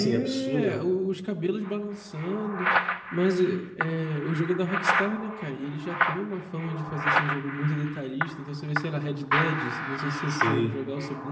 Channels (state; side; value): identical; both; correlation 1.00